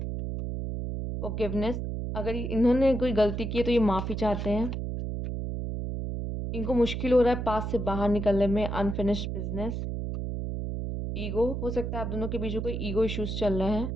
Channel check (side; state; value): right; noise; hum, 3 dB below the sound